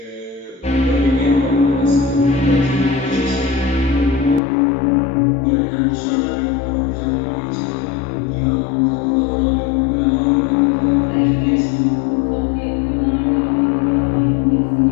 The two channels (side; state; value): right; drops out; at 4.4 s